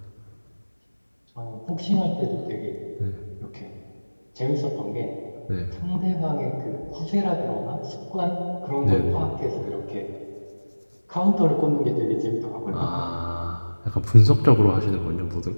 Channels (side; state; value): both; inverted; correlation -1.00